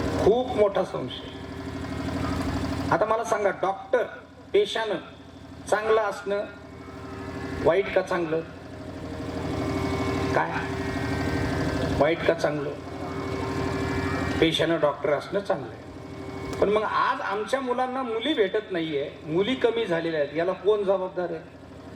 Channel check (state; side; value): identical; both; correlation 1.00